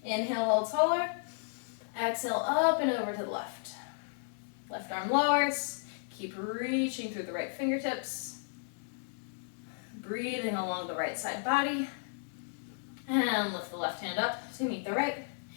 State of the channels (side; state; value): right; silent; digital silence